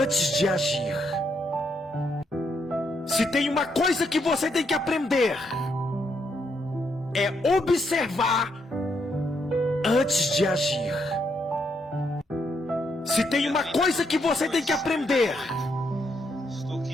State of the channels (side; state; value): both; normal; correlation 0.76